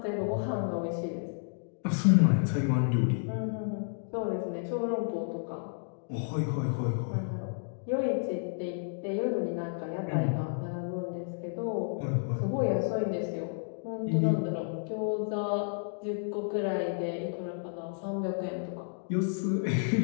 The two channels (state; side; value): silent; right; digital silence